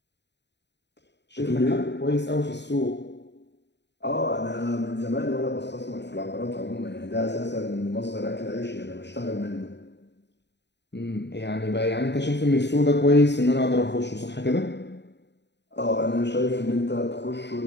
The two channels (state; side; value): late; right; 0.50 ms